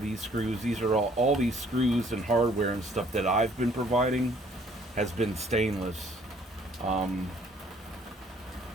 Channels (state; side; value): normal; both; correlation 0.60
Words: screws. These are all these screws and hardware and stuff that I've been providing has been stainless.